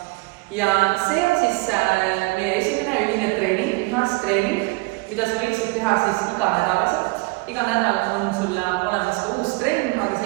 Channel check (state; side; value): quieter; left; 26.0 dB